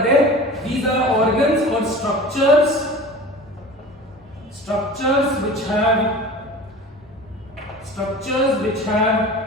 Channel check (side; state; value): both; normal; correlation 0.37